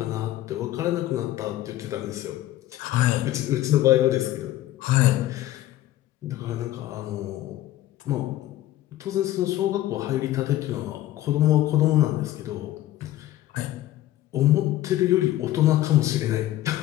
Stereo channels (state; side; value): quieter; right; 14.4 dB